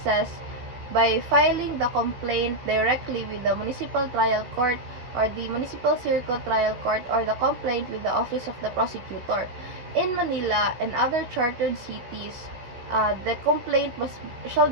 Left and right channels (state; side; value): late; left; 16 ms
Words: by filing the complaint directly with the municipal trial court or the municipal circuit trial court, or the complaint with the office of the prosecutor. In Manila and other chartered cities, the complaint shall